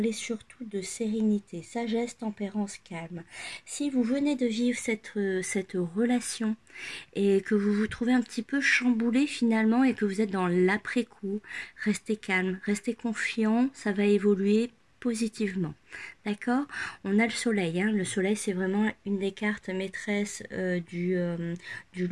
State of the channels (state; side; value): identical; both; correlation 1.00